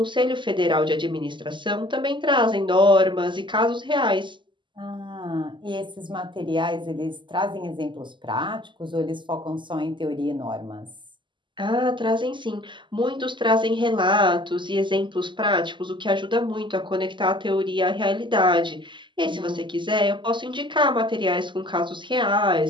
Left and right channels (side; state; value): left; late; 0.23 ms